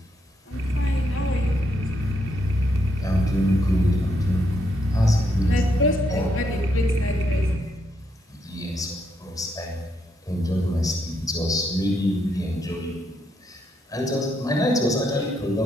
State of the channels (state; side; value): normal; both; correlation 0.77